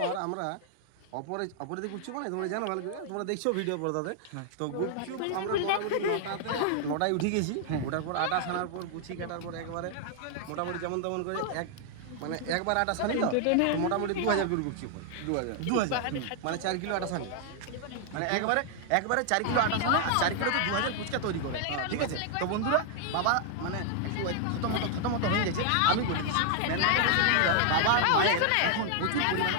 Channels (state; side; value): different; both; correlation 0.00